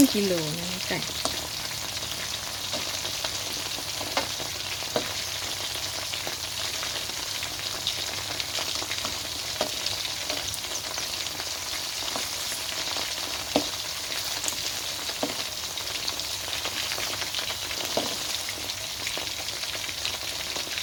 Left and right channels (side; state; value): both; identical; correlation 1.00